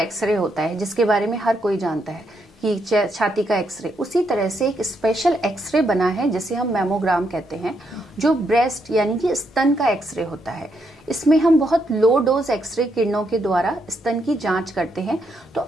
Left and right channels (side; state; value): both; normal; correlation 0.78